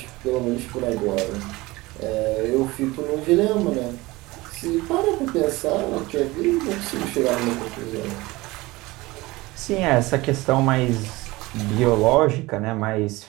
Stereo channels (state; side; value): quieter; left; 21.0 dB